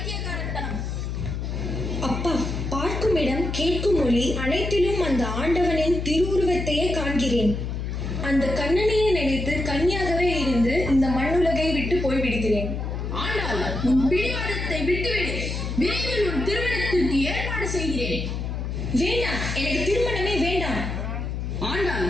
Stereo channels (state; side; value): noise; left; hum, 4 dB below the sound